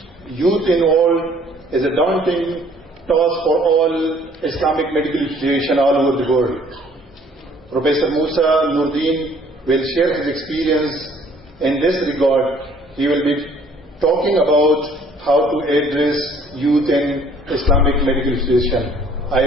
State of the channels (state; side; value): normal; both; correlation 0.58